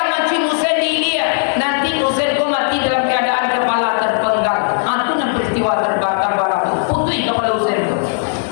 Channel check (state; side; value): silent; right; digital silence